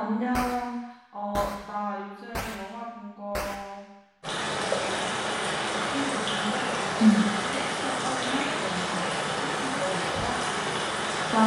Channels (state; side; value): identical; both; correlation 1.00